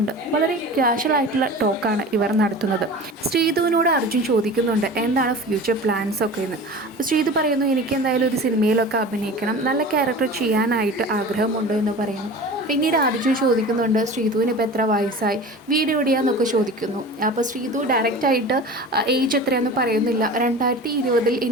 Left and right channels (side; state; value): both; normal; correlation 0.36